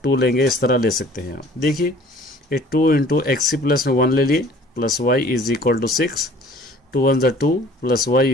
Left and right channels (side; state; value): both; normal; correlation 0.51